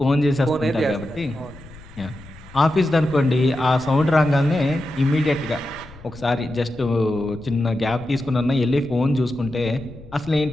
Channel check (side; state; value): left; noise; rumble, 20 dB below the sound